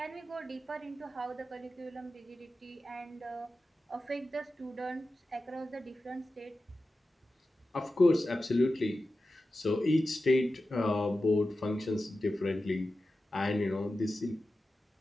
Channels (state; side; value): normal; both; correlation 0.93